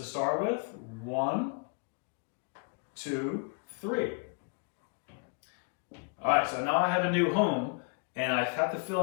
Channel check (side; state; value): right; quieter; 40.0 dB